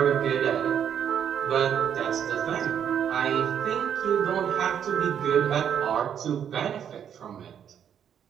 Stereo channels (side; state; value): left; quieter; 8.7 dB